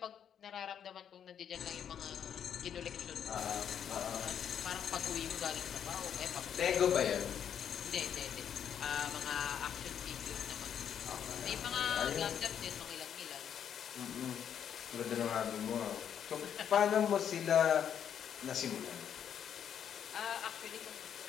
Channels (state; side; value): quieter; right; 8.7 dB